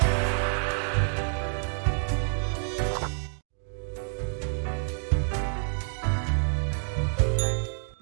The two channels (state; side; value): silent; left; digital silence